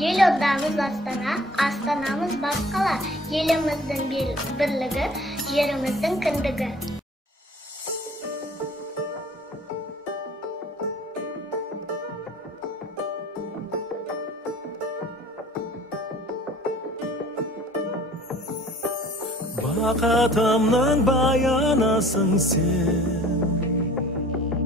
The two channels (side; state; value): both; normal; correlation 0.49